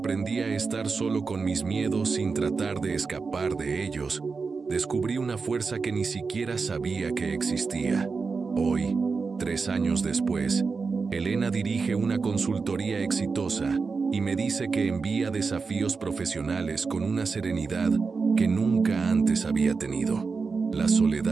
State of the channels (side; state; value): left; quieter; 4.7 dB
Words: a estar solo con mis miedos sin tratar de escapar de ellos, descubrí una fuerza que ni siquiera sabía que existía. Hoy, 3 años después, Elena dirige una consultoría exitosa y me dice que envía desafíos profesionales con una serenidad que nunca antes había tenido. La